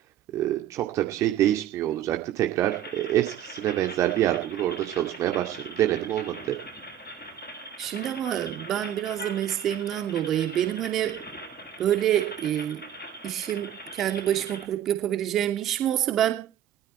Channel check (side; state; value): left; quieter; 11.3 dB